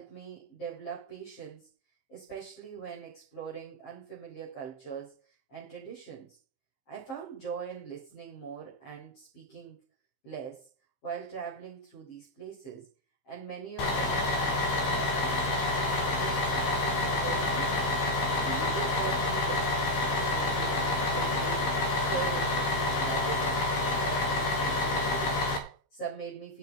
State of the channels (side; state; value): right; late; 15 ms